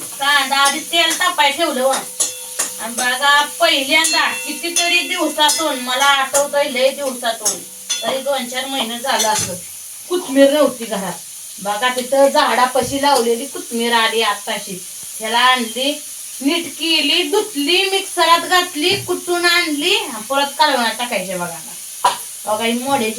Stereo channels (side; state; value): both; identical; correlation 1.00